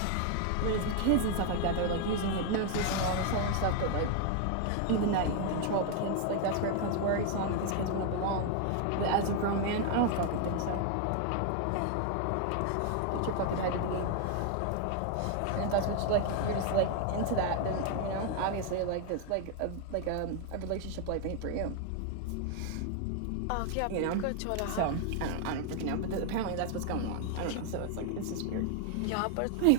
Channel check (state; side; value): different; both; correlation 0.00